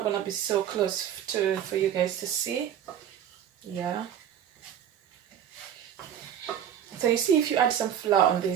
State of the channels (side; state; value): left; quieter; 9.6 dB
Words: gonna be so close for you guys to see. Yeah. So you see, if you add some flour on